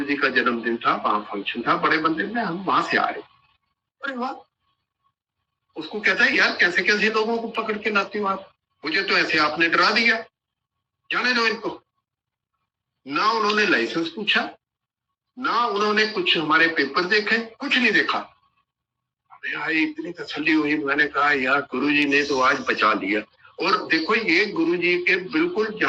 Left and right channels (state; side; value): identical; both; correlation 1.00